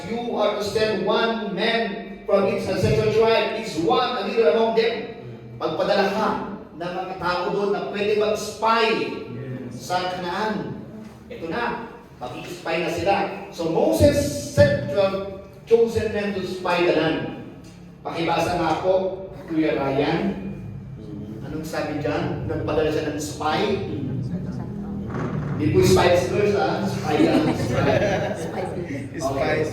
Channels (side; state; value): both; identical; correlation 1.00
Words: You are to send one man from each ancestral tribe, each one a leader among them. Pagpadala ka ng mga tao doon na pwede mag-spy sa Canaan. Ito na, mag-spy na sila. So Moses sent 12 chosen men to spy the land. Pakibasa nga po, Kuya Ryan. Anong sabi dyan? Nagpadala siya ng spy? Hindi po Spice Girls, ha? Spy lang. Spice